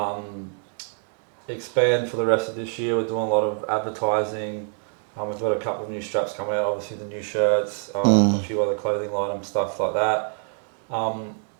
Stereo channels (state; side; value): silent; left; 55 dB below the other